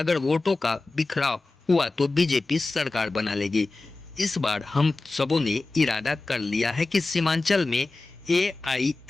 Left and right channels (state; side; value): quieter; right; 3.3 dB